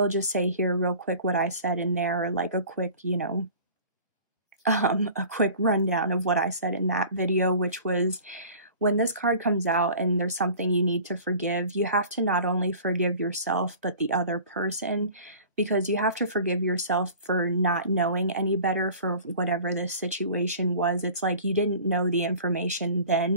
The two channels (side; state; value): both; inverted; correlation -0.44